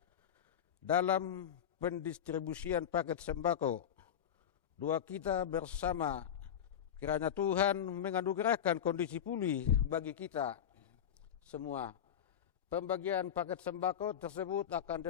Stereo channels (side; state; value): right; quieter; 9.2 dB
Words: dalam pendistribusian paket sembako. Doa kita bersama kiranya Tuhan menganugerahkan kondisi pulih bagi kita semua. Pembagian paket sembako tersebut akan